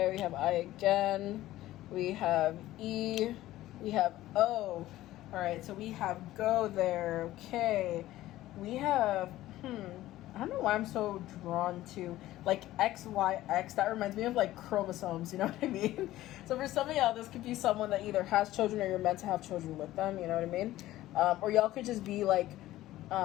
we have I again, we have E, we have O. All right, so we have go there, okay. We have, I don't know why I'm so drawn to, like, XYX. That reminds me of, like, chromosomes, you know what I mean? So for some of y'all, this could be someone that either has children or you're meant to have children with them, you know what I mean? Or y'all could just be, like,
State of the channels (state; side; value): quieter; right; 15.4 dB